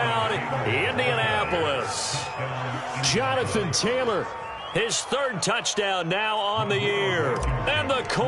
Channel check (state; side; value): identical; both; correlation 1.00